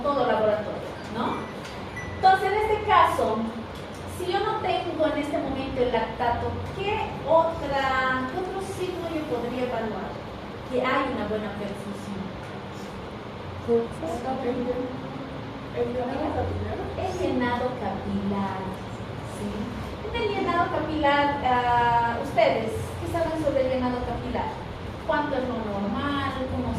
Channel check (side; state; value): both; identical; correlation 1.00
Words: todo laboratorio, ¿no? Entonces, en este caso, si yo no tengo en este momento el lactato, ¿qué otro signo yo podría evaluar? Que hay una buena perfusión. ¿El llenado capilar? El llenado capilar, ¿sí? En el llenado capilar, ustedes, ¿qué saben sobre el llenado capilar? ¿Cuánto es lo normal? ¿Cómo